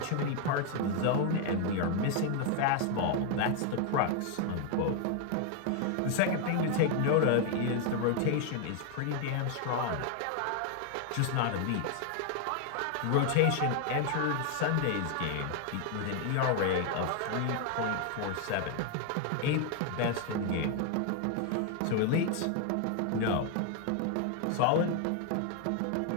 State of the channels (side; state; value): both; different; correlation 0.01